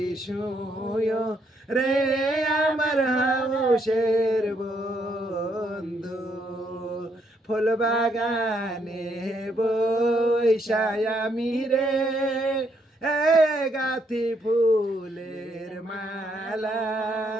শুয় রে আমার হাউসের বন্ধু ফুল বাগানে বৈশায় আমি রে গাথি ফুলের মালা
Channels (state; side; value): normal; both; correlation 0.74